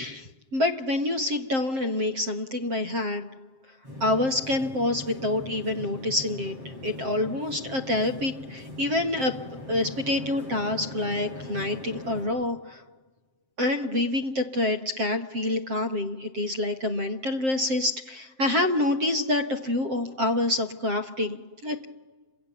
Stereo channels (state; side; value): late; left; 7.6 ms